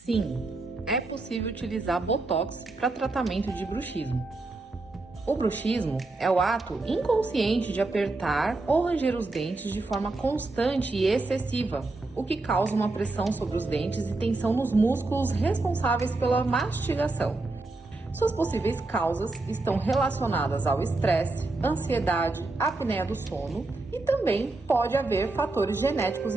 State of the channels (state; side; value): quieter; left; 3.2 dB